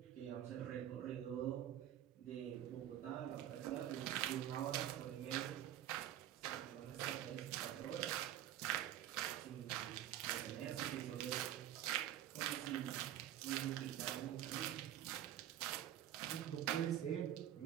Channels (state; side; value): quieter; left; 11.9 dB